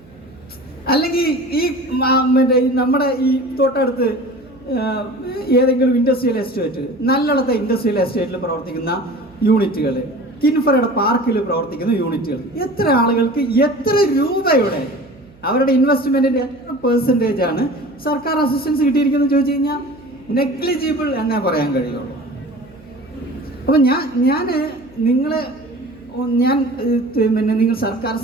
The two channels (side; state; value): right; noise; hum, 26 dB below the sound